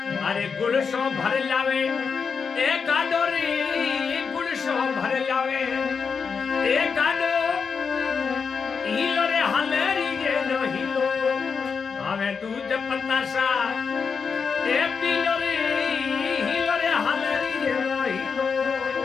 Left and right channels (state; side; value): quieter; right; 5.7 dB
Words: अरे गुड़ सो भर लावे ए गाडो रे गुड़ सो भर लावे ए गाडो हिलो रे हलेरी गे नो हिलो हमें दूध पतासा ए पीलो रे हिलो रे हलेरी गे नो हिलो